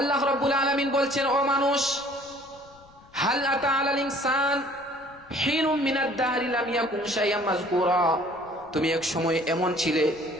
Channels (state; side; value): noise; left; rumble, 26 dB below the sound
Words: রাব্বুল আলামিন বলছেন, ও মানুষ, হাল আতা আলাল ইনসান হিনুম মিনাদ দাহরি লাম ইয়াকুন শাইআম মাযকুরা, তুমি এক সময় এমন ছিলে,